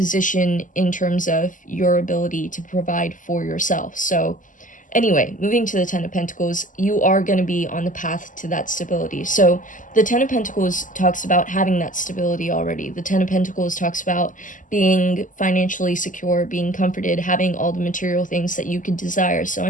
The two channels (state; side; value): late; right; 0.38 ms